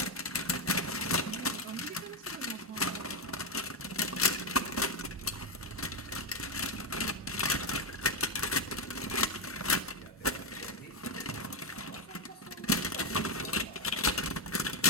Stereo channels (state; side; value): normal; both; correlation 0.05